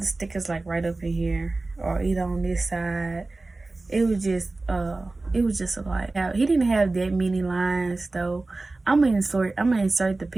stickers like right up in here or either on this side. It was just a lot. He didn't have that many lines though. I'm gonna insert the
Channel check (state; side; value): quieter; left; 3.2 dB